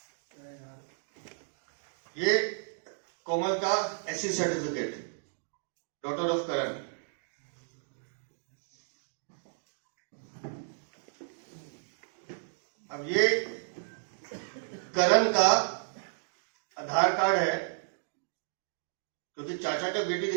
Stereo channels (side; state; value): left; silent; digital silence